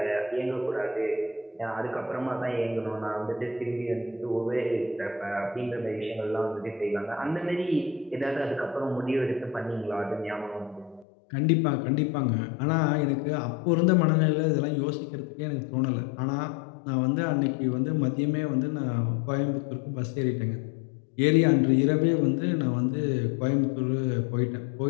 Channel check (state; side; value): drops out; right; at 11.1 s